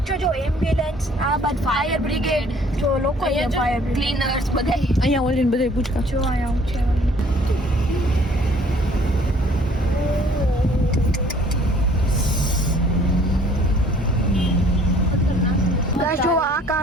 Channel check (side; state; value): both; normal; correlation 0.57